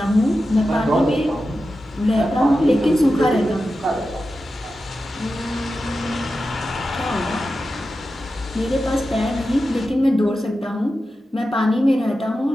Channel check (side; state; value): both; normal; correlation 0.92